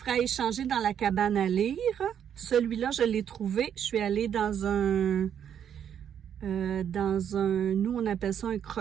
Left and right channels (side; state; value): left; quieter; 8.9 dB